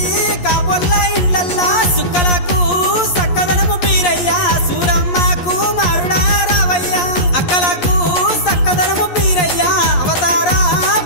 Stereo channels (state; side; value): late; right; 11 ms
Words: కాబోళ్ళ ఇళ్ళల్లా సుక్కలకు సక్కదనము బీరయ్యా సూరమ్మకు మారుడా రావయ్యా అక్కలకు సక్కదనము బీరయ్యా అవతార